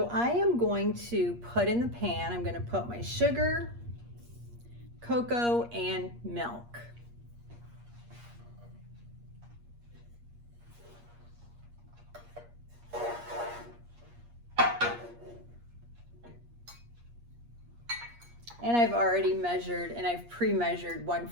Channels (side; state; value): left; late; 8.5 ms